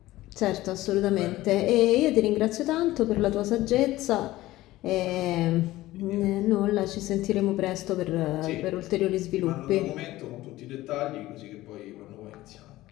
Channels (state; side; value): quieter; right; 16.8 dB